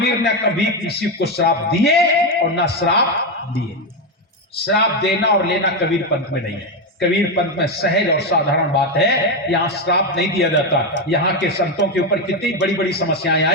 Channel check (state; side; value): normal; both; correlation 0.09